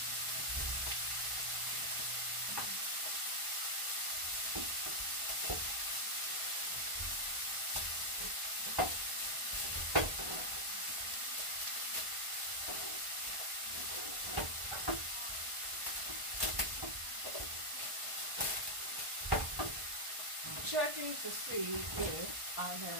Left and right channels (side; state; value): left; late; 1.5 ms